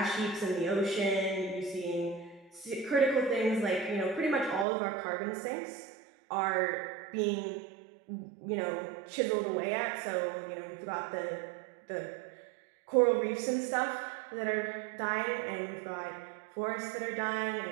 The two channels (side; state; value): left; drops out; at 4.7 s